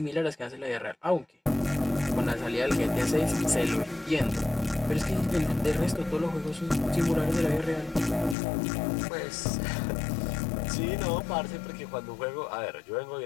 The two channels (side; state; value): right; drops out; at 8.3 s